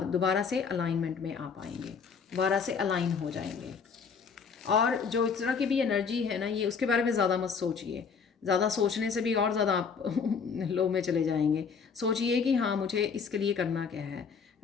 दोबारा से अलाइनमेंट में आ पाएंगे, दोबारा से अलाइन हो जाएंगे। और जो इस तरह की भी एनर्जी है ना, ये उसके बारे में ज़्यादा मत सोचिए। ज़्यादा सोचने से भी और ज़्यादा आप लो में चले जाएंगे। सोचिए कि हाँ, मुझे इसके लिए करना क्या है,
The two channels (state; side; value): quieter; right; 5.9 dB